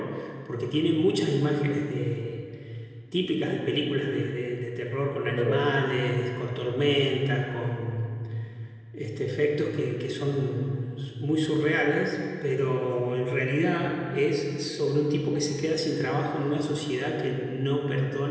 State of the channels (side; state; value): both; identical; correlation 1.00